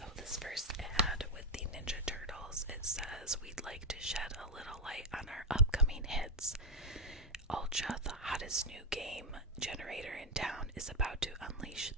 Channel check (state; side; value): normal; both; correlation 0.07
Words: this first ad with the Ninja Turtles, it says, "We'd like to shed a little light on our upcoming hits. Ultra, the hottest new game generator in town, is about to unleash